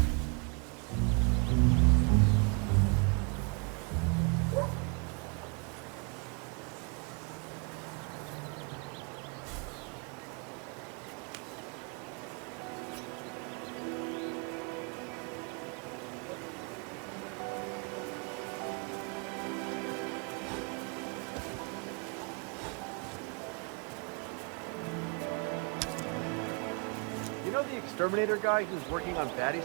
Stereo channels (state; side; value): quieter; left; 33.4 dB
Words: Exterminator guy who's working on